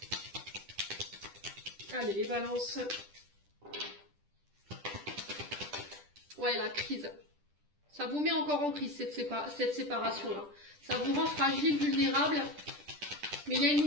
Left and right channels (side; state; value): left; late; 10 ms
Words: Allez, les balances. Ouais, la crise. Ça vous met encore en crise, cette séparation-là. Ça vous rend fragile, vulnérable. Mais il y a une